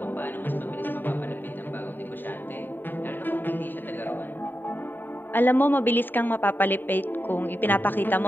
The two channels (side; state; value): right; late; 0.092 ms